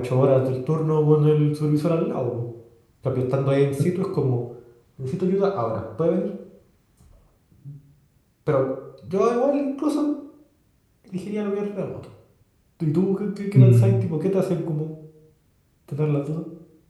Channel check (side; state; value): both; identical; correlation 1.00